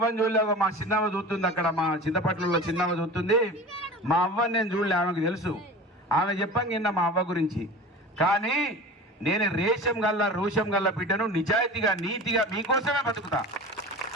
చూడలే. మా చిన్నమ్మ చూస్తుంది అక్కడ, మా చింతపట్లలో చిన్నమ్మ చూస్తుంది. మా అవ్వని నేను చూడలే, ఆమెకు తెలుసు. ఆమె చెప్పాను నిన్న మా అవ్వ గురించి. కానీ నేను రేషం గల్లా రోషం గల్లా బిడ్డను, నిజాయితీగా నీతిగా మీకోసమే బతుకుతా.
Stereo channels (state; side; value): normal; both; correlation 0.35